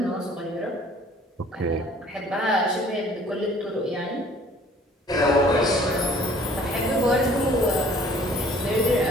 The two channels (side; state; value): both; normal; correlation 0.54